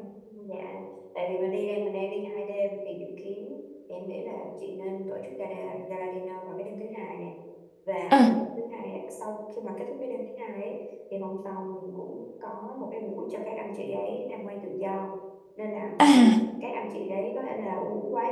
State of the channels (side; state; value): both; identical; correlation 1.00